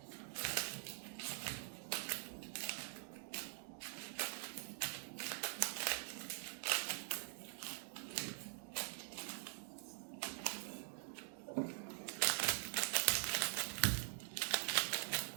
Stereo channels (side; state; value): left; silent; digital silence